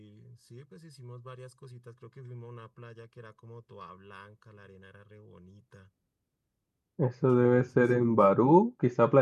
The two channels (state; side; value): identical; both; correlation 1.00